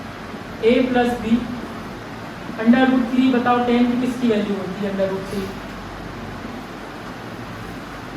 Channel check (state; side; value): identical; both; correlation 1.00